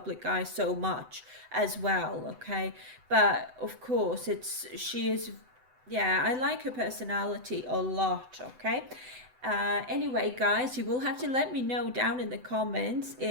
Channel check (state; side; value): late; left; 7.9 ms